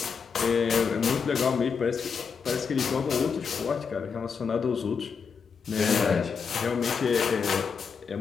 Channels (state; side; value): quieter; right; 5.9 dB